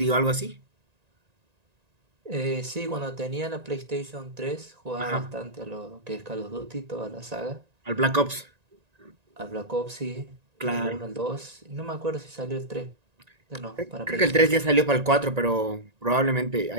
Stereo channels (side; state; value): left; late; 1.9 ms